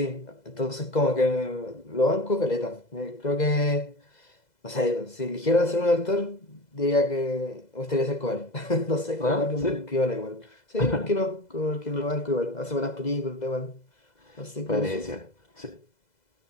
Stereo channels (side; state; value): right; late; 2.0 ms